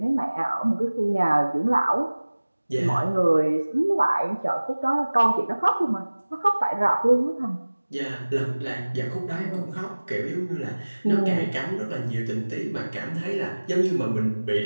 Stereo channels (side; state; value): both; inverted; correlation -1.00